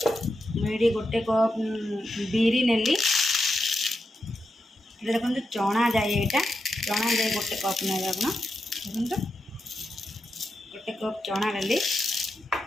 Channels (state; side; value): normal; both; correlation 0.87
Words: गोटे कप बिरी नेली। देखो चना जाए, यहाँ चना जाए गोटे कप ने आप देखो गोटे कप चना डाली,